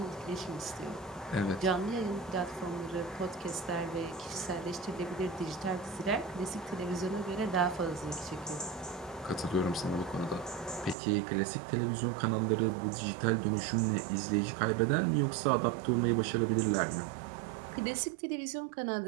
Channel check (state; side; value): drops out; left; at 11.0 s